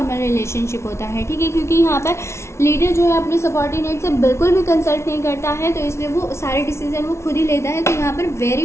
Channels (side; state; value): right; late; 0.13 ms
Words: रिलेशनशिप होता है। ठीक है, क्योंकि यहाँ पर लीडर जो है अपने सबॉर्डिनेट से बिल्कुल भी कंसल्ट नहीं करता है, तो इसलिए वो सारे डिसीजन वो खुद ही लेता है। तो यहाँ पर